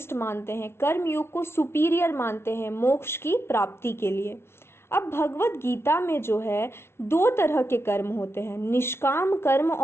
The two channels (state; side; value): late; right; 0.12 ms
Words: मानते हैं, कर्म योग को सुपीरियर मानते हैं मोक्ष की प्राप्ति के लिए। अब भगवत गीता में जो है दो तरह के कर्म होते हैं, निष्काम कर्म